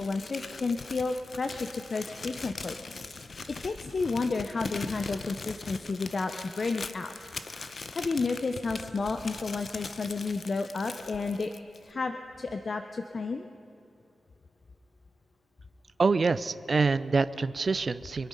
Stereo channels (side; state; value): both; normal; correlation 0.89